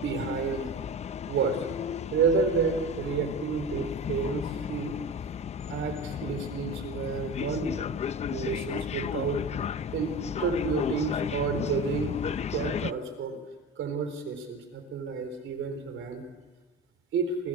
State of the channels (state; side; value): normal; both; correlation 0.29